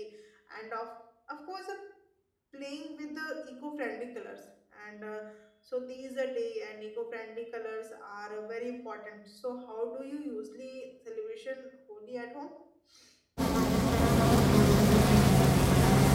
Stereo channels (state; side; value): identical; both; correlation 1.00